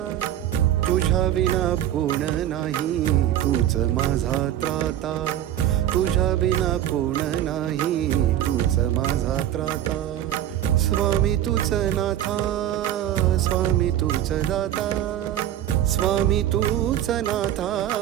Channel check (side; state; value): left; quieter; 11.9 dB